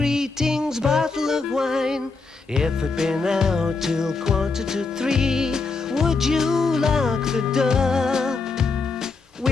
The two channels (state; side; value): quieter; right; 4.3 dB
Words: bottle of wine? If it'd been out till 2:45, would you lock the door?